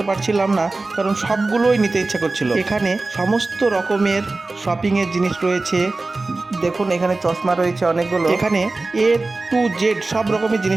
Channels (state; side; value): quieter; left; 3.3 dB